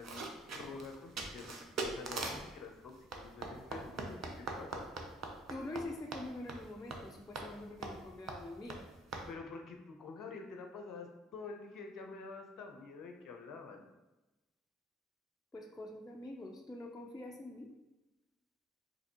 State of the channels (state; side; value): normal; both; correlation 0.54